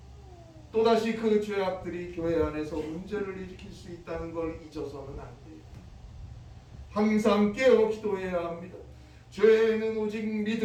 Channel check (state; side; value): identical; both; correlation 1.00